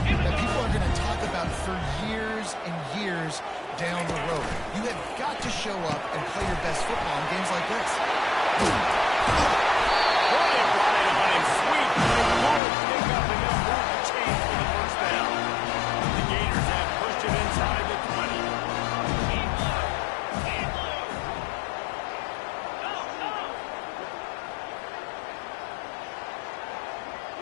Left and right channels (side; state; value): right; drops out; at 12.6 s